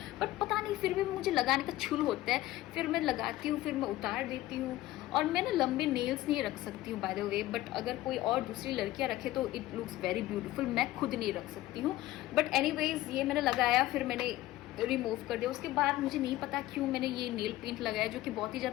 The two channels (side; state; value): right; quieter; 16.0 dB